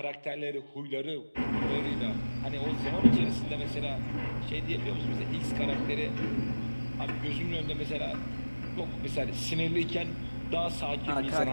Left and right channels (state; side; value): inverted; both; correlation -1.00